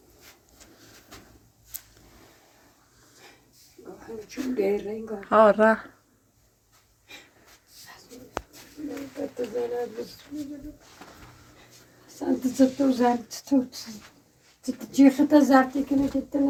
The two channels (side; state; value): both; identical; correlation 1.00